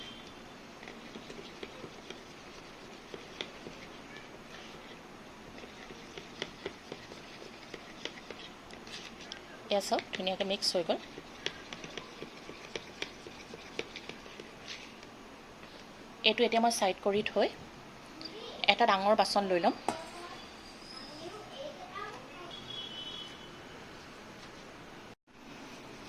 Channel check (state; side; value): identical; both; correlation 1.00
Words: এয়া চাওক ধুনীয়াকৈ মিক্স হৈ গ'ল। এইটো এতিয়া মই ছাইড কৰি থৈ এটা ডাঙৰ বাচন লৈ ল'ম।